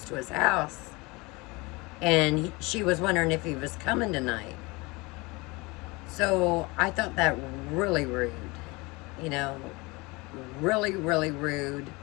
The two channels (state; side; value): quieter; right; 24.9 dB